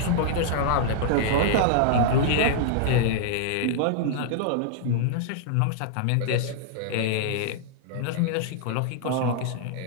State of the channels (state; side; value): different; both; correlation -0.01